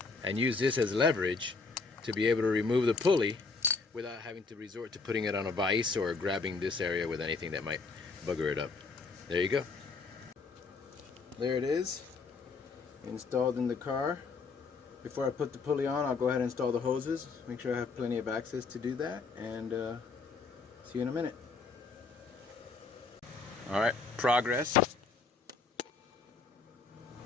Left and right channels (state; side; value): quieter; right; 4.4 dB